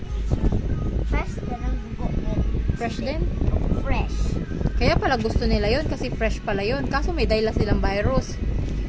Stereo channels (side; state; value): both; identical; correlation 1.00